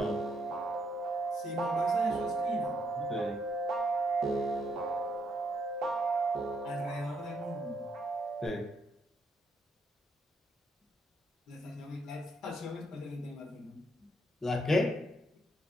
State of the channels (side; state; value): both; normal; correlation 0.74